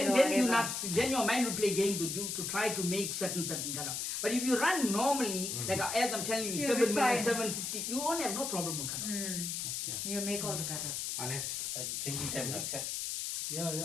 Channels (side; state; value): left; noise; hiss, 3 dB below the sound